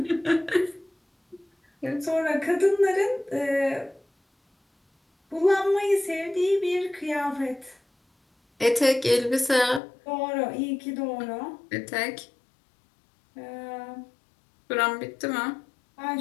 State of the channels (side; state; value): right; drops out; at 9.8 s